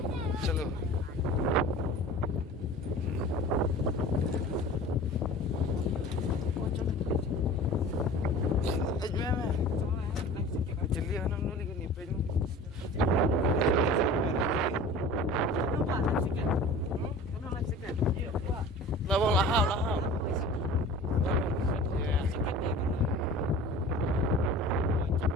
Chalo. Lawang lahau.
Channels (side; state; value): both; normal; correlation 0.40